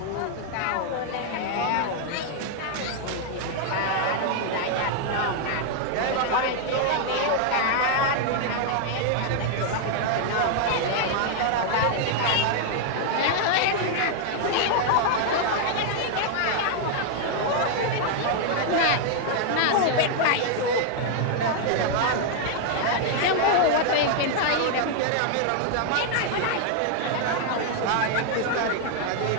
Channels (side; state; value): both; different; correlation 0.00